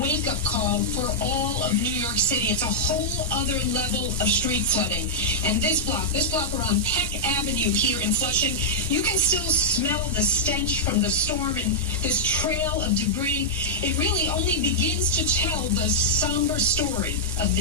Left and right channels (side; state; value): both; normal; correlation -0.09